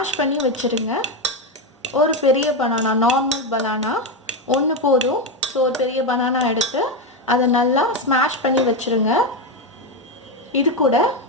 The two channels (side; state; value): both; normal; correlation 0.10